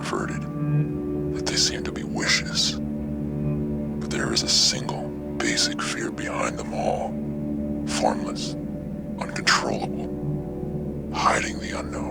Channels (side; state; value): both; identical; correlation 1.00